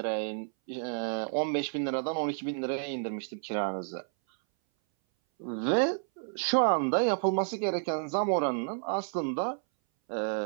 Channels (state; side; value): silent; left; 57 dB below the other